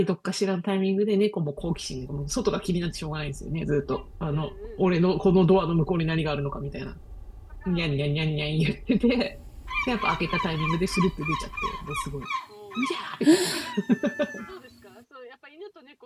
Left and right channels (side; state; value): both; identical; correlation 1.00